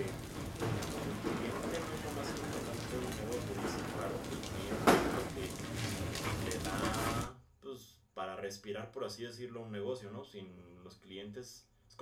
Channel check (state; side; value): identical; both; correlation 1.00